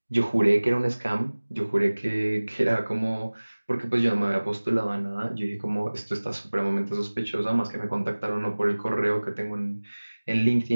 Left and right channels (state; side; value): inverted; both; correlation -1.00